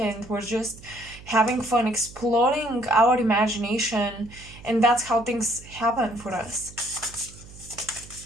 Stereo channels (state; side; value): noise; right; hum, 19 dB below the sound